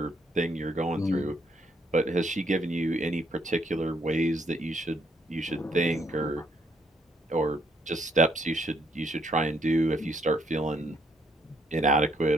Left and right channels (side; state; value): both; normal; correlation 0.70